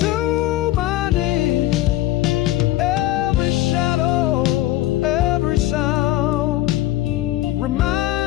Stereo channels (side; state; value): right; quieter; 15.4 dB